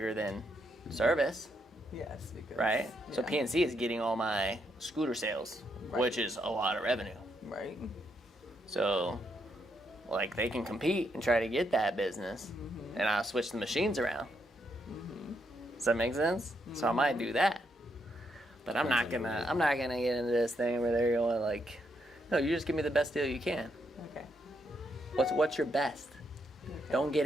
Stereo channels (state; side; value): normal; both; correlation 0.78